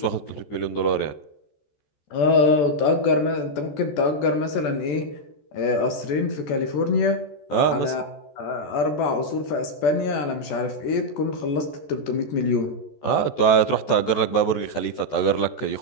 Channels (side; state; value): right; late; 14 ms